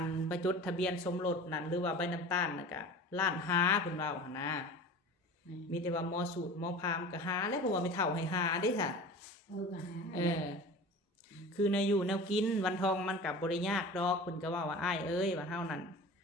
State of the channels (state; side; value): normal; both; correlation 0.37